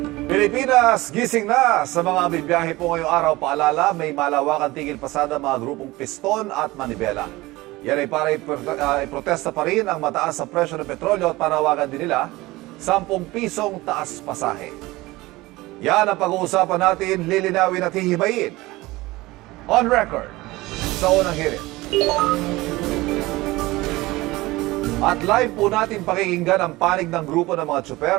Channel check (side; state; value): left; quieter; 20.0 dB